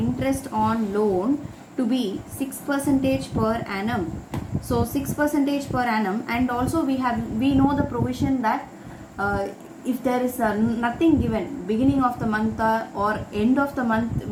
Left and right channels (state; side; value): identical; both; correlation 1.00